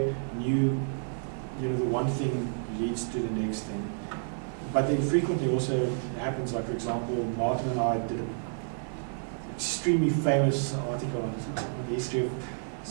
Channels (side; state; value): left; silent; 55 dB below the other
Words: the one thing leads to the next thing. But then frequently also happens, like for example, Martin and I did an extremely famous article on the history of